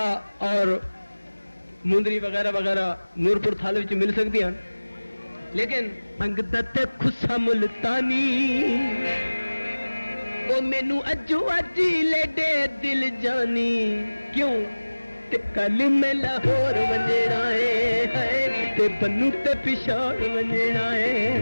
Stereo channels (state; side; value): inverted; both; correlation -1.00